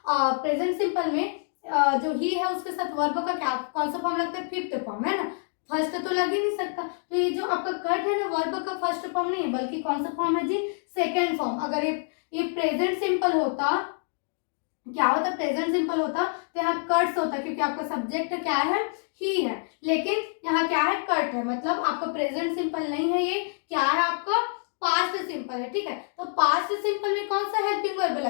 सिंपल में जो ही है उसके साथ वर्ब का क्या कौन सा फॉर्म लगता है, फिफ्थ फॉर्म, है ना, फर्स्ट तो लग ही नहीं सकता। तो ये जो आपका कट है ना, वर्ब का फर्स्ट फॉर्म नहीं है बल्कि कौन सा फॉर्म है जी, सेकेंड फॉर्म। अगर ये प्रेजेंट सिंपल होता, क्या होता, प्रेजेंट सिंपल होता तो यहाँ कट्स होता, क्योंकि आपका सब्जेक्ट क्या है, ही है, लेकिन यहाँ क्या है, कट है, मतलब आपका प्रेजेंट सिंपल नहीं है, ये क्या है आपका पास्ट सिंपल है। ठीक है, तो पास्ट सिंपल में कौन सा हेल्पिंग वर्ब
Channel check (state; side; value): silent; right; 60 dB below the other